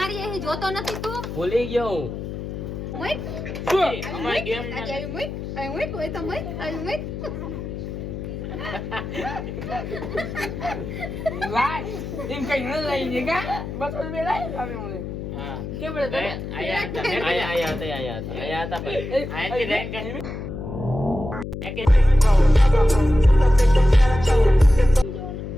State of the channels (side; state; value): left; noise; hum, 7 dB below the sound